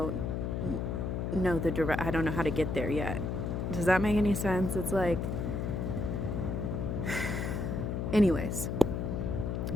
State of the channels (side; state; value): left; noise; hum, 2 dB below the sound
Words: know I don't know how to get there yet. Does that make any sense? It's like, anyways,